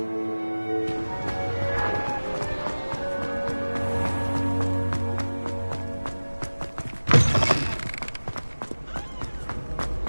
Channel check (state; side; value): inverted; both; correlation -1.00